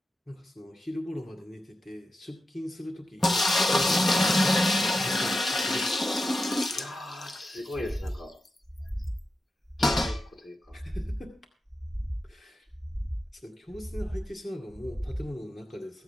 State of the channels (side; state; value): both; normal; correlation 0.90